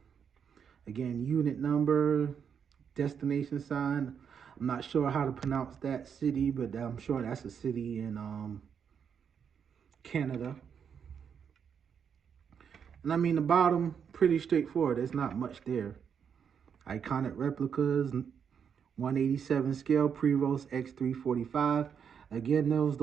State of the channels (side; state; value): left; quieter; 7.3 dB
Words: Again, unit number, destination sign. I'm not sure how to pronounce that city, but I'm sure that's a city in Canada. And I mean, the bottom, pretty straightforward. There's not much there. Iconic replicas, 187 scale, Prevost X3-45. Again,